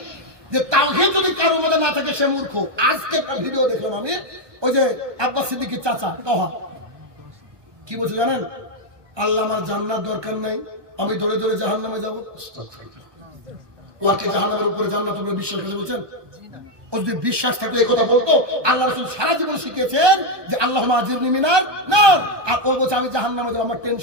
যে তাওহীদ যদি কারোর মধ্যে না থাকে সে মূর্খ। আজকে একটা ভিডিও দেখলাম আমি, ওই যে আব্বাস সিদ্দিকীর চাচা তহা কি বলছে জানেন? আল্লাহ আমার জান্নাত দরকার নাই, আমি দৌড়ে দৌড়ে জাহান্নামে যাবো? ও আর কি জাহান্নামের উপরে জান্নাতের উপরে বিশ্বাস করে বলছেন? ও যদি বিশ্বাস থাকতো এই কথা বলতো। আল্লাহ রাসূল সারা জীবন শিখিয়েছেন যে আল্লাহুম্মা আজিরনি মিনার নার, আর ও বলছে আমি জাহান্নামে যাব, আমার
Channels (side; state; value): left; late; 1.1 ms